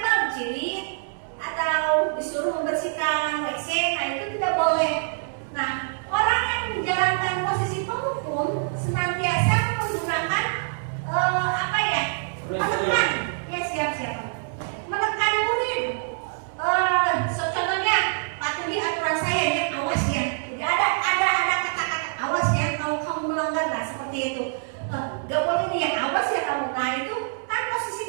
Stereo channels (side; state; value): left; silent; 62 dB below the other